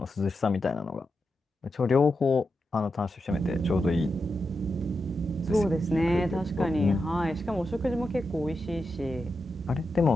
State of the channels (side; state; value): both; normal; correlation 0.88